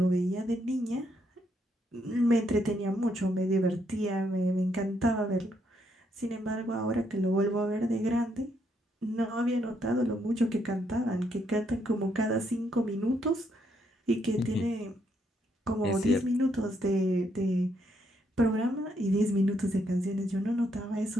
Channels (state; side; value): normal; both; correlation 0.75